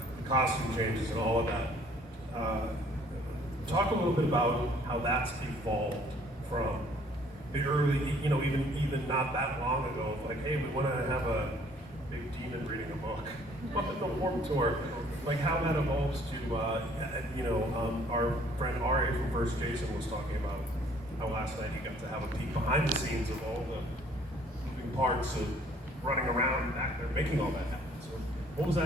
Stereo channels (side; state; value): both; normal; correlation 0.58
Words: the costume changes and all of that. Talk a little bit about how that's evolved from the early, even not that long ago. Like, hey, we want to have a big demon reading a book on the Warped Tour. Like how that evolves to, our friend Ari from First Jason was talking about how last night he got to have a peek behind the scenes of all the moving parts of running around back there, making all that happen. So what was